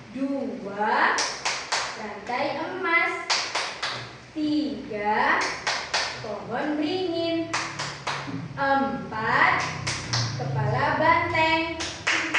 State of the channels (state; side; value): identical; both; correlation 1.00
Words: 2 rantai emas, 3 pohon beringin, 4 kepala banteng,